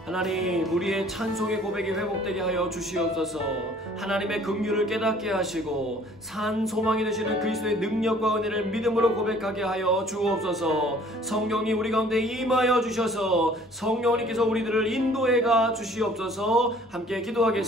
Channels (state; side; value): normal; both; correlation 0.54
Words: 하나님, 우리의 찬송의 고백이 회복되게 하여 주시옵소서. 하나님의 긍휼을 깨닫게 하시고 산 소망이 되시는 그리스도의 능력과 은혜를 믿음으로 고백하게 하여 주옵소서. 성령님 우리 가운데 임하여 주셔서 성령님께서 우리들을 인도해 가 주시옵소서. 함께